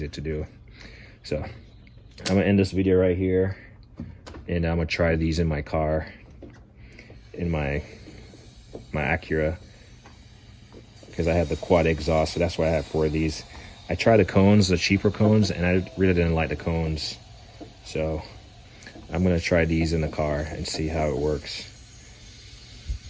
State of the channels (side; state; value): both; identical; correlation 1.00